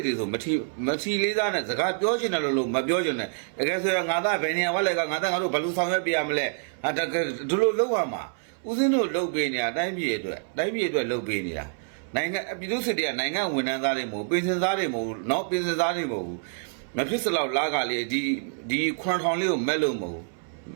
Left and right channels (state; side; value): silent; left; 60 dB below the other